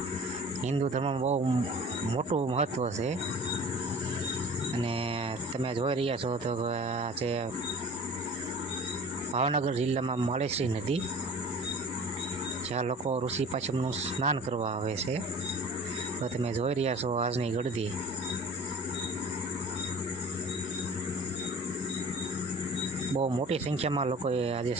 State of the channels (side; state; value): both; normal; correlation 0.42